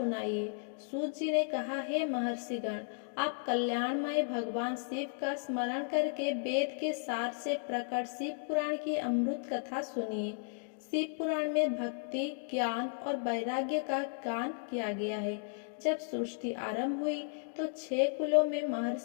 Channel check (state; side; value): silent; right; digital silence